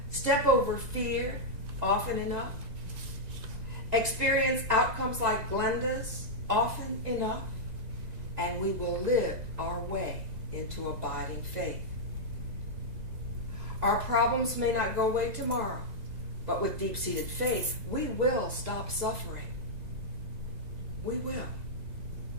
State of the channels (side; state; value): left; late; 2.0 ms